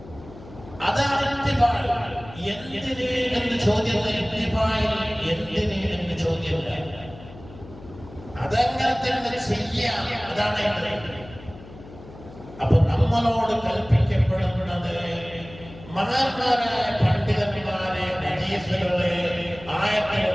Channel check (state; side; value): noise; left; hum, 18 dB below the sound